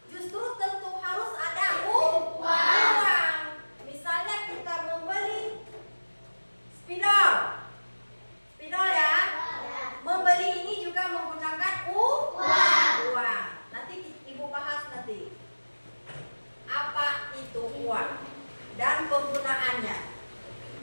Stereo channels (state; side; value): inverted; both; correlation -1.00